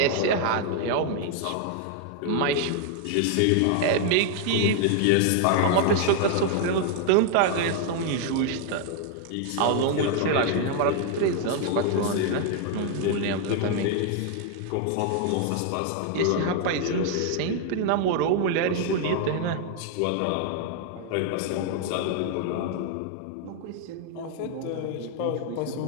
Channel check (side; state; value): both; different; correlation 0.00